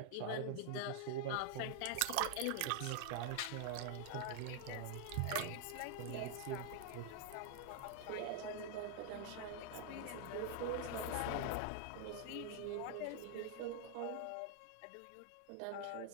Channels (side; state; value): both; different; correlation 0.00